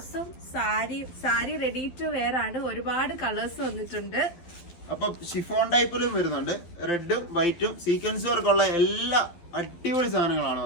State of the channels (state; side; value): late; right; 12 ms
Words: സാരി റെഡി ടു വെയർ ആണ്. ഒരുപാട് കളേഴ്സ് വന്നിട്ടുണ്ട്. അപ്പൊ ഷിഫോൺ ടൈപ്പിലും വരുന്നുണ്ട്. റെഡും വൈറ്റും സീക്വൻസ് വർക്കുള്ള എല്ലാ അടിപൊളി സാധനങ്ങളാണ്